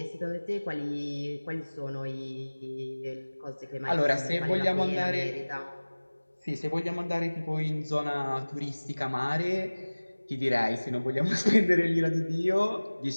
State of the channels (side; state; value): both; inverted; correlation -1.00